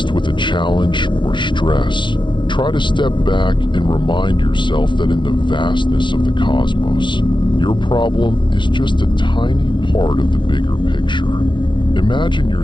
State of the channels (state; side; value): late; right; 0.23 ms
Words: with a challenge or stress, try to step back and remind yourself that in the vastness of the cosmos, your problem is just a tiny part of the bigger picture. Imagine